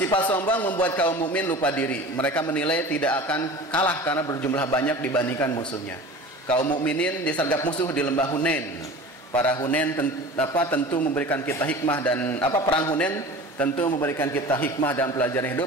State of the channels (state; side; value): normal; both; correlation 0.37